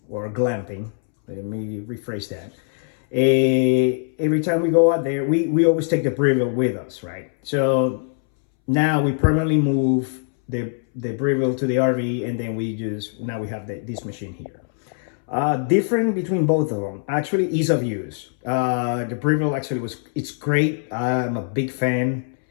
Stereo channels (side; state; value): right; silent; 64 dB below the other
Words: or glamping, let me rephrase that. Every time we go out there, we always take the Breeville with us, right? So now we permanently move the Breeville to the RV, and then now we have this machine here. Different between both of them, actually, ease of use. The Breeville actually it's great. I'm a big fan.